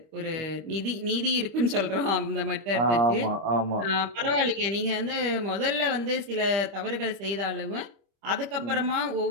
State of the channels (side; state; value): left; late; 25 ms